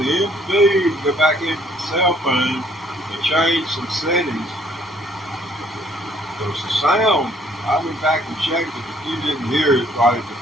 the feed, go back into the cell phone and change some settings. Because the sound, I went back and checked it. If you didn't hear it right at the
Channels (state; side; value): normal; both; correlation 0.62